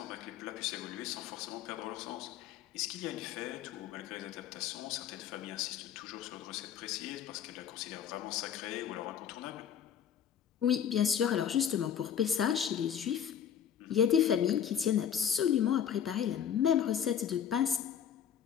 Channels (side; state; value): right; quieter; 8.8 dB